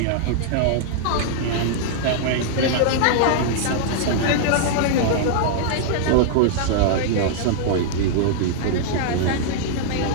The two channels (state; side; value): different; both; correlation -0.01